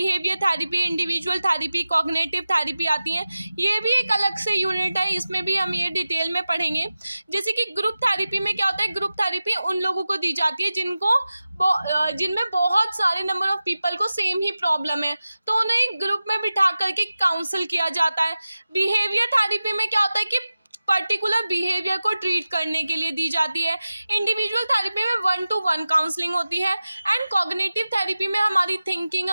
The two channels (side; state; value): both; inverted; correlation -0.94